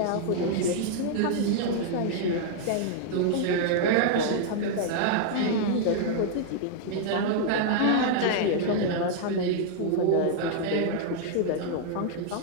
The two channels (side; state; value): both; different; correlation -0.01